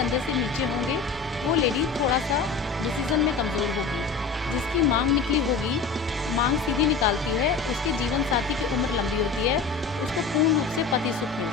से नीचे होंगे वो लेडी थोड़ा सा डिसीज़न में कमज़ोर होगी। जिसकी मांग निकली होगी, मांग सीधी निकालती है, उसके जीवन साथी की उम्र लंबी होती है, उसको पूर्ण रूप से पति सुख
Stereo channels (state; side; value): quieter; right; 4.9 dB